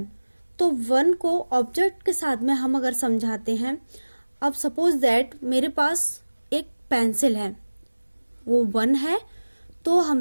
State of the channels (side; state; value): both; inverted; correlation -1.00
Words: तो 1 को ऑब्जेक्ट के साथ में हम अगर समझाते हैं, अब सपोज दैट मेरे पास एक पेंसिल है, वो 1 है, तो